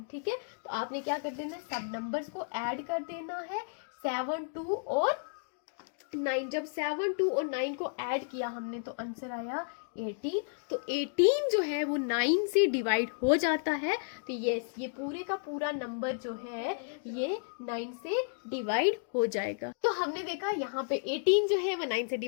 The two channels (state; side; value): silent; right; digital silence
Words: ठीक है, तो आपने क्या कर देना है, सब नंबर्स को ऐड कर देना है, 7 2 और 9। जब 7 2 और 9 को ऐड किया हमने तो आंसर आया 18। तो 18 जो है वो 9 से डिवाइड हो जाता है। तो यस, ये पूरे का पूरा नंबर जो है ये 9 से डिवाइड हो जाएगा। तो हमने देखा यहाँ पे 18 जो है वो 9 से